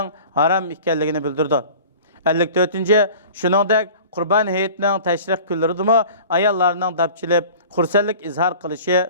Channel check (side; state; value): both; inverted; correlation -0.42